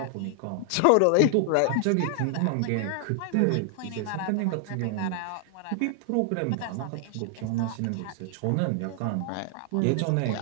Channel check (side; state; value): both; different; correlation 0.00